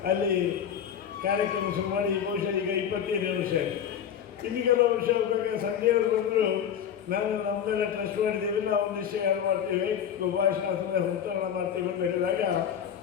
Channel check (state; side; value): quieter; right; 8.7 dB